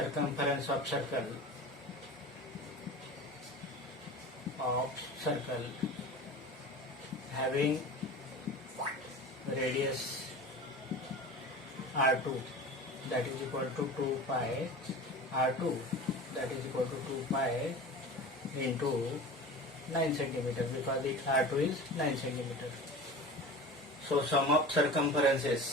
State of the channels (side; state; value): both; normal; correlation 0.35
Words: of circle having radius r2, that is equal to 2 pi r2, that is equal to 2 pi into 9 centimeter because it R2 is 9 centimeter. So sum of